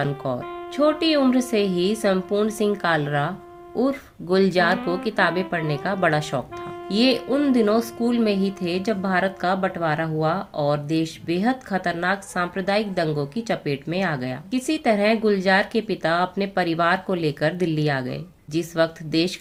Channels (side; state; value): both; identical; correlation 1.00